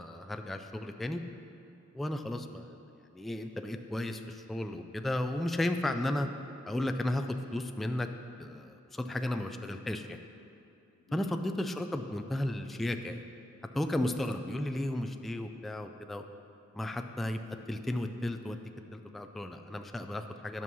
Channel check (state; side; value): normal; both; correlation 0.90